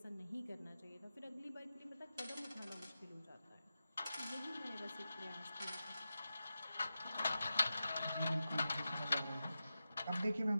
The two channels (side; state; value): both; inverted; correlation -0.92